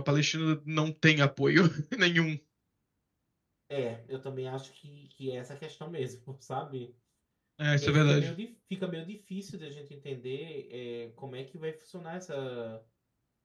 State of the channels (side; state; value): both; identical; correlation 1.00